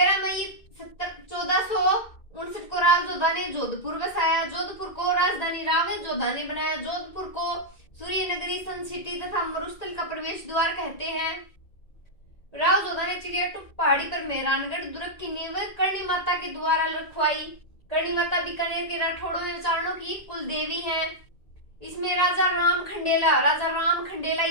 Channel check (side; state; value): right; late; 1.9 ms